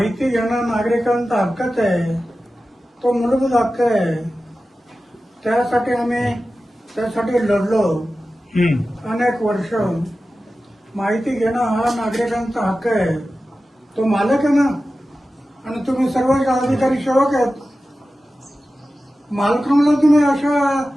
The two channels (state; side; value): normal; both; correlation 0.94